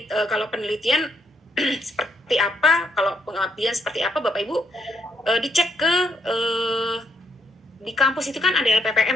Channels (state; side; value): normal; both; correlation 0.75